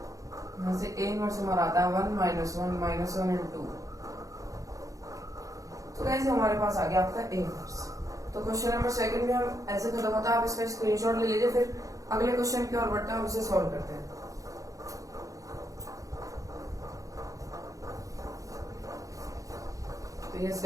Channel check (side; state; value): left; late; 0.16 ms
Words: यहाँ से A इनवर्स हमारा आता है 1 - 1 एंड 2। तो गाइस हमारे पास आ गया आपका A इनवर्स। तो क्वेश्चन नंबर 2 में हम ऐसे खत्म होता है, आप इसका स्क्रीनशॉट ले लीजिए, फिर अगले क्वेश्चन की ओर बढ़ते हैं, हम उसे सॉल्व करते हैं। तो यस